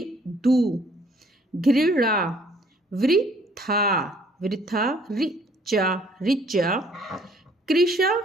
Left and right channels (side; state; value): both; normal; correlation 0.60